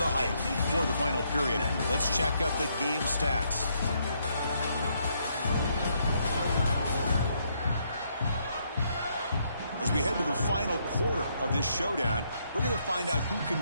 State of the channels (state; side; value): inverted; both; correlation -0.73